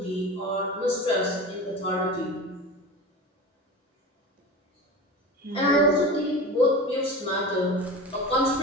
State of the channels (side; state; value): both; normal; correlation 0.31